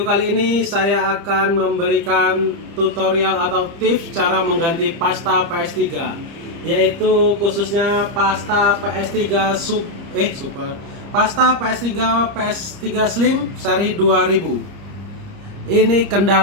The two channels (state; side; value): late; left; 30 ms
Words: kali ini saya akan memberikan tutorial atau tips cara mengganti pasta PS3, yaitu khususnya pasta PS3 Super, pasta PS3 Slim seri 2000. Ini